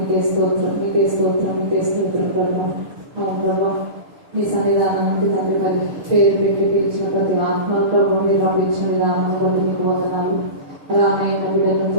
స్తోత్రం, మీకే స్తోత్రం, మీకే స్తోత్రం ప్రభావ. అవును ప్రభావ, మీ సన్నిధానం నుండి తండ్రి మరి పేరు పెట్టి పిలిచిన ప్రతి ఆత్మ ప్రభావ మీరు పంపించిన విధానాన్ని బట్టి మీకు వందనాలు. అలానే బిడ్డలను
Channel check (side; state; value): left; late; 6.7 ms